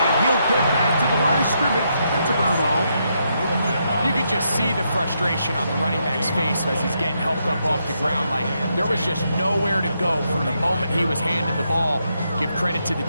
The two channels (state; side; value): inverted; both; correlation -0.79